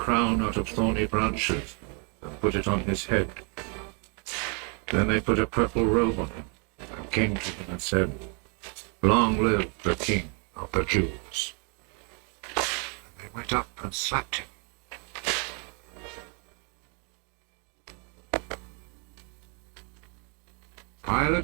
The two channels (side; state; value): left; quieter; 37.1 dB